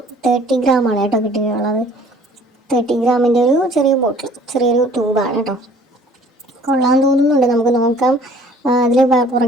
30 ഗ്രാമാണ് കേട്ടോ കിട്ടിയിട്ടുള്ളത്. 30 ഗ്രാമിൻ്റെ ഒരു ചെറിയ ബോട്ടിൽ, ചെറിയൊരു ട്യൂബാണ് കേട്ടോ. കൊള്ളാൻ തോന്നുന്നുണ്ട്. നമുക്ക് നോക്കാം. അതിൽ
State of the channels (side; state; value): both; normal; correlation 0.54